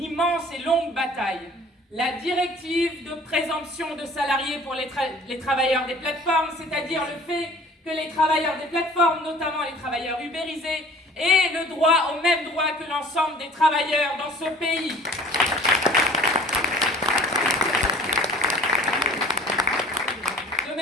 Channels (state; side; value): normal; both; correlation 0.48